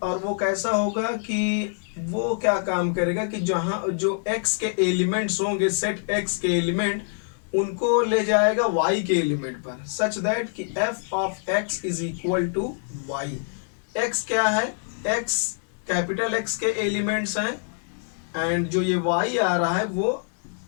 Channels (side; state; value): right; silent; digital silence